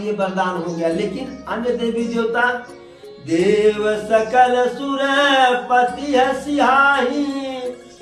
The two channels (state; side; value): identical; both; correlation 1.00